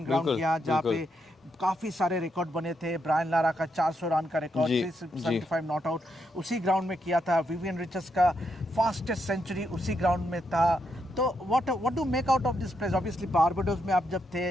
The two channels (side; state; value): both; normal; correlation 0.80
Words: ग्राउंड किया जहाँ पे काफ़ी सारे रिकॉर्ड बने थे। ब्रायन लारा का 400 रन का रिकॉर्ड, 375 नॉट आउट उसी ग्राउंड में किया था। विवियन रिचर्ड्स का फास्टेस्ट सेंचुरी उसी ग्राउंड में था। तो what do make out of this place? Obviously Barbados में आप जब